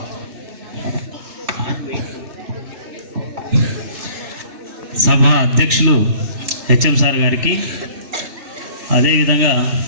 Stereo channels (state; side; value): late; left; 3.1 ms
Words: సభ అధ్యక్షులు హెచ్ఎం సార్ గారికి, అదేవిధంగా